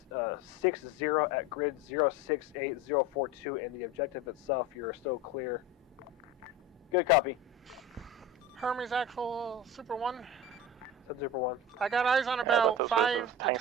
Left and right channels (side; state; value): both; normal; correlation 0.30